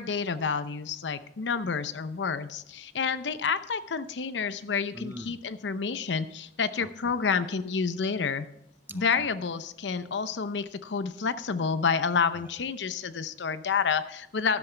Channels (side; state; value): right; quieter; 5.3 dB